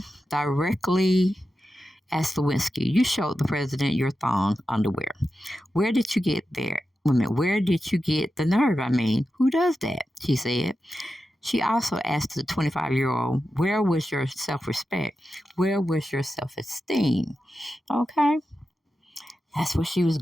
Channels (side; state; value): both; normal; correlation 0.91